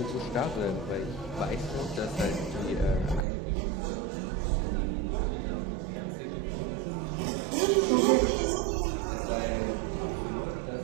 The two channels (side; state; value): left; drops out; at 3.2 s